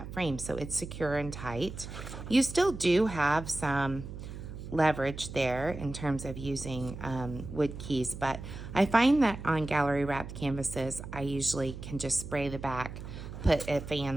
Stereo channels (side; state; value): right; noise; hum, 10 dB below the sound